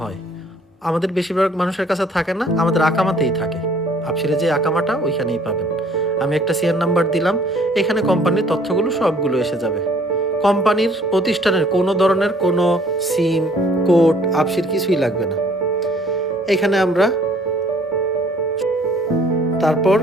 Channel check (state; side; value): normal; both; correlation 0.58